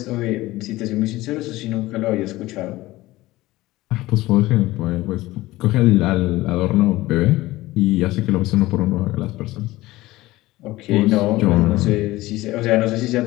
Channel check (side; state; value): right; quieter; 18.2 dB